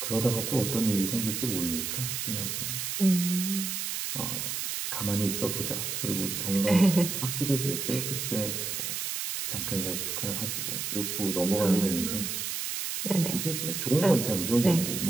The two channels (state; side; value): noise; right; hiss, 3 dB below the sound